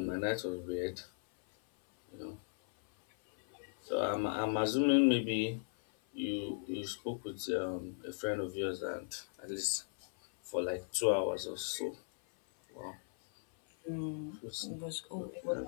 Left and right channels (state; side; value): silent; right; 53 dB below the other